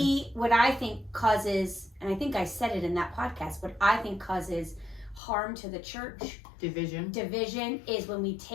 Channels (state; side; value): drops out; right; at 5.2 s